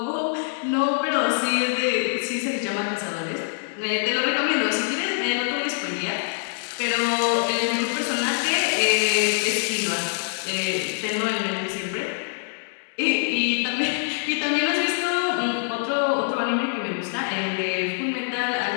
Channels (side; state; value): right; silent; digital silence